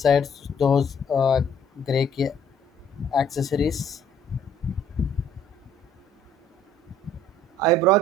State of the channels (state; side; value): normal; both; correlation 0.60